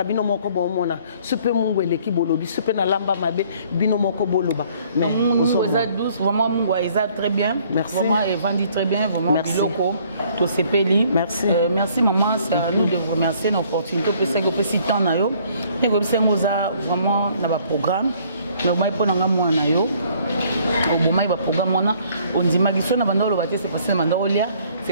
bino moko bomona super mungu eleki bolobi super na lamba mabe bino moko boloba mais mungu eza douce vraiment mungu eza très bien merci vraiment et vendi très bien vraiment biloko to sepeli merci merci maman c'est à nous de vous remercier l'opportunité que c'est que petit temps na yo et que c'est moza vraiment na ba programme mais moi pour nga mwana yo obomai ba programme mona ondima kiso na banda oloba te c'est parce que banda olia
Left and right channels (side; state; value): both; inverted; correlation -0.60